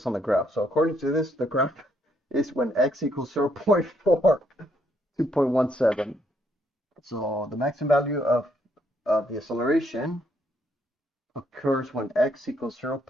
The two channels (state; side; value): normal; both; correlation 0.72